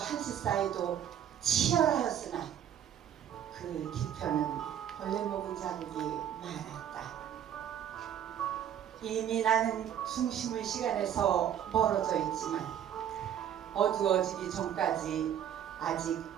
사이도 치열하였으나 그 뒤편은 벌레 먹은 자국이 많았다. 이미 나는 중심의 시간에서 멀어져 있지만 어두워지기 전까지 아직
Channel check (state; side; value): quieter; left; 9.8 dB